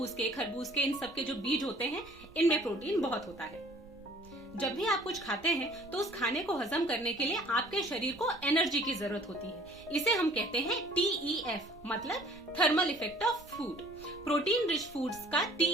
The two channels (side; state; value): right; noise; rumble, 23 dB below the sound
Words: के, खरबूज के, इन सब के जो बीज होते हैं इनमें प्रोटीन बहुत होता है। जब भी आप कुछ खाते हैं तो उस खाने को हजम करने के लिए आपके शरीर को एनर्जी की जरूरत होती है। इसे हम कहते हैं TEF, मतलब thermal effect of food. Protein rich foods का